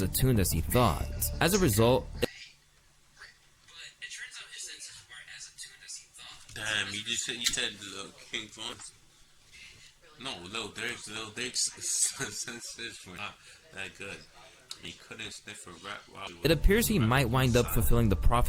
attuned as he thought. As a result, damn, you said King Von's. No, Lil Durk's senses were not that good. He couldn't sniff a rat while he was. It appears he might wind up fulfilling the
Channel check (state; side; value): identical; both; correlation 1.00